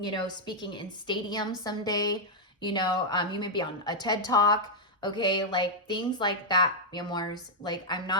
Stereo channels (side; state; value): both; normal; correlation -0.04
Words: know, speaking in stadiums someday. You know, you may be on a TED Talk. Okay, like things like that, mi amors. Like